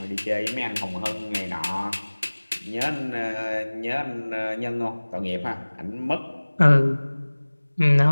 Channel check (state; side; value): inverted; both; correlation -1.00